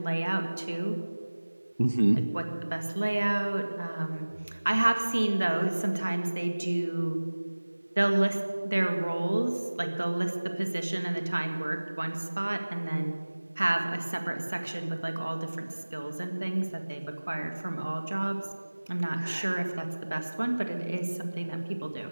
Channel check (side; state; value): both; inverted; correlation -1.00